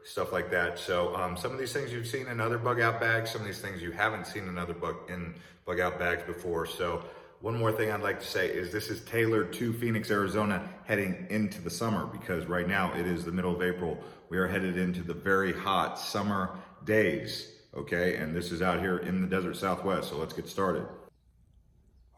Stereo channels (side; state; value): both; identical; correlation 1.00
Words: stuff like that. So some of these things you've seen in other bug out bags, some of these things you haven't seen in other bug out bags before. So one more thing I'd like to say is this is tailored to Phoenix, Arizona heading into the summer, because right now it is the middle of April. We are headed into the very hot summer days, okay? And this is out here in the desert Southwest, so let's get started.